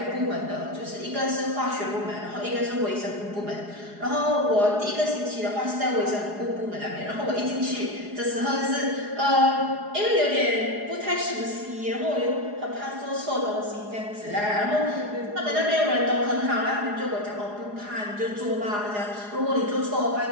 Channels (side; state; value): left; late; 4.8 ms